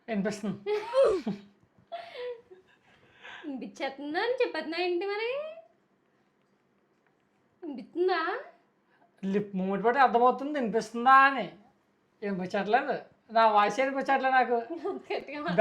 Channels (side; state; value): both; identical; correlation 1.00